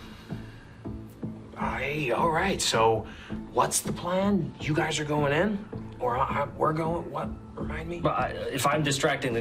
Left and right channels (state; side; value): identical; both; correlation 1.00